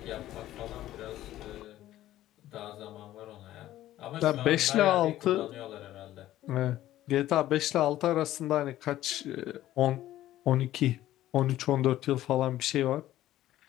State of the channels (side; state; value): right; quieter; 14.0 dB